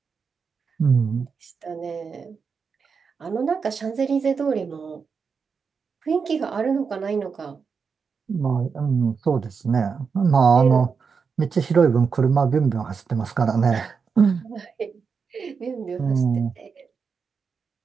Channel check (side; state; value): left; quieter; 5.6 dB